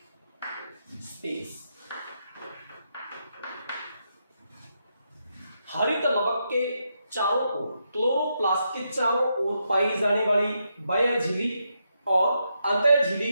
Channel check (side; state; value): both; inverted; correlation -0.82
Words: स्पेस। हरित लवक के चारों ओर, क्लोरोप्लास्ट के चारों ओर पाई जाने वाली बाह्य झिल्ली और अंतः झिल्ली